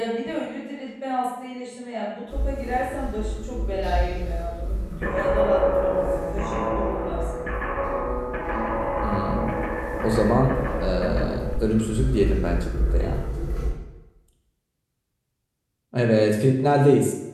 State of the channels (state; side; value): identical; both; correlation 1.00